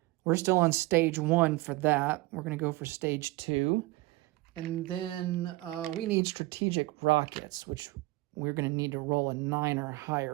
We're still on stage 1 for that. We're going to go for stage 2. And then we need strategic rockets, which we're going to need to roll a 9 or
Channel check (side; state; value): left; quieter; 20.8 dB